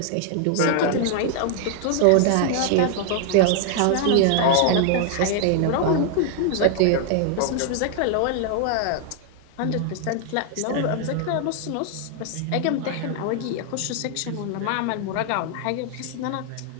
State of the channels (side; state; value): both; different; correlation 0.00